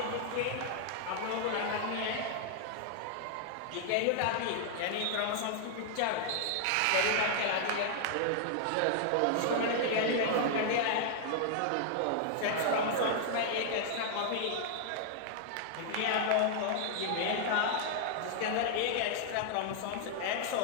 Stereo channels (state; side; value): different; both; correlation -0.01